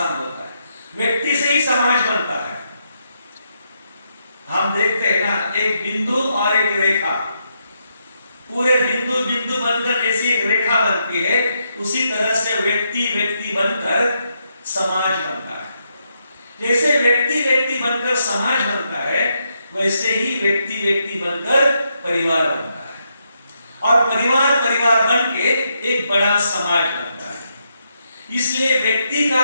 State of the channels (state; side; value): inverted; both; correlation -0.80